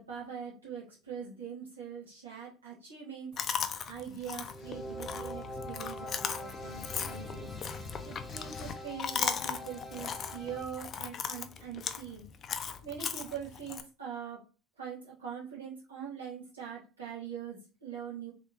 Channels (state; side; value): normal; both; correlation 0.49